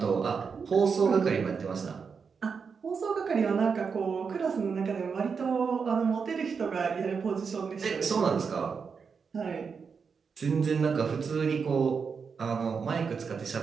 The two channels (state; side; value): quieter; left; 5.7 dB